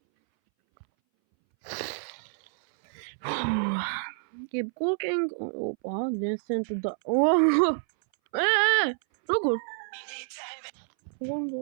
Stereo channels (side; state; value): left; silent; 59 dB below the other